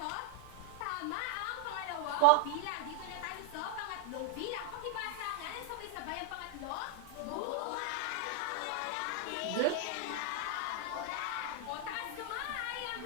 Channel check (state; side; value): different; both; correlation 0.00